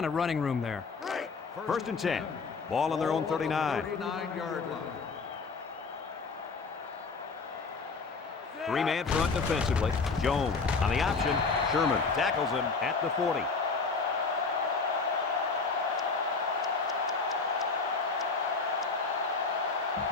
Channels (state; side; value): quieter; right; 4.5 dB